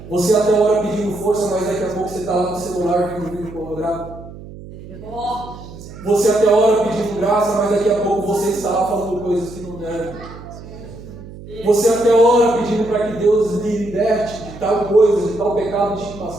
Você até ora pedindo força, mas daqui a pouco você está lá no celular vendo vídeo pornográfico. Você até ora pedindo graça, mas daqui a pouco você está lá falando coisas que não devem. Você até ora pedindo para que Deus lhe liberte de tal coisa, de tal pecado de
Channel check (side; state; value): right; noise; hum, 15 dB below the sound